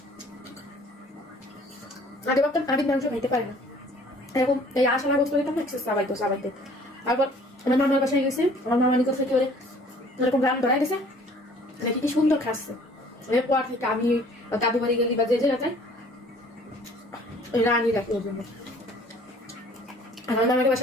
আগে ভাবতাম আমি মাংস খাইতে পারি না, এরকম এই আশা না করতে হইতাম, সাবাইতে তারপর আমার মামার বাসায় গেছে, আমার মামার নিকট থেকে ওরে এরকম রান ধরাই গেছে, নাকি কি সুন্দর খাচ্ছে। এরপর থেকে আমি দাদু বাড়ি গেলি বা যে জায়গায় ওই রানই রাখি ওর জন্য। আমার মামার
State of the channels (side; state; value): both; normal; correlation 0.54